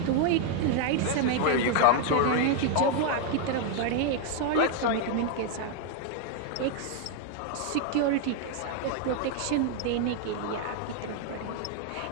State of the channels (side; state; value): both; different; correlation 0.00